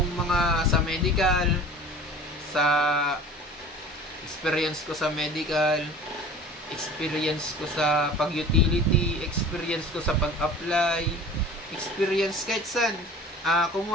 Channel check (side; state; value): both; normal; correlation 0.42